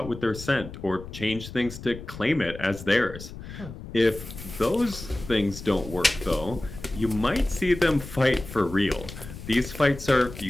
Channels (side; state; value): left; noise; rumble, 13 dB below the sound